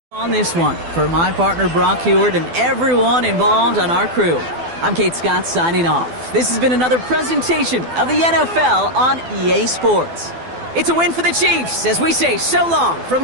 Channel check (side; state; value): left; late; 12 ms